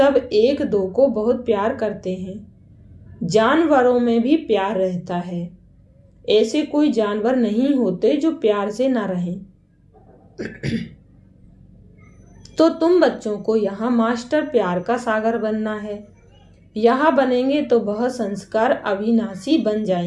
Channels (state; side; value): identical; both; correlation 1.00